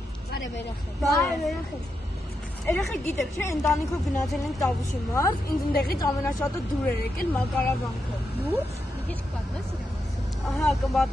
Բարև երեխեք։ Բարև երեխեք։ Երեխեք գիտեք, չէ, ընտանիքով գնացել ենք Տավուշի մարզ, ինձ ընդեղից ամենաշատը դուր էր եկել Մակարավանքը։ Դուր։ Մի քիչ կպատմես իրան։ Ահա,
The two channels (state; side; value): normal; both; correlation 0.85